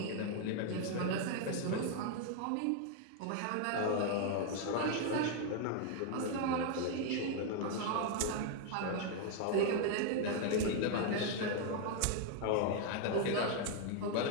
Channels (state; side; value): different; both; correlation 0.00